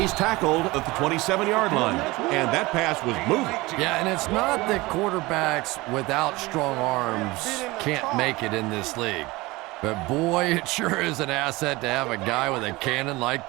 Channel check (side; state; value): left; quieter; 21.5 dB